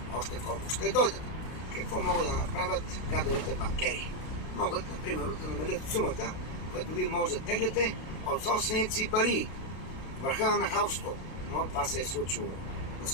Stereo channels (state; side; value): late; right; 32 ms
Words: още колко ще дойдат. Какво могат да направят гадовете банкери? Могат, например, да намалят сумата, която вие може да тегляте от собствените си пари. Върха на нахалството. Но това се е случило.